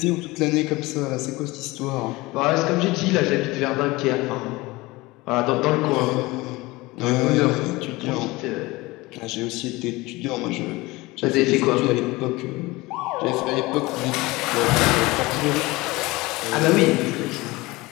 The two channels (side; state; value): right; quieter; 21.5 dB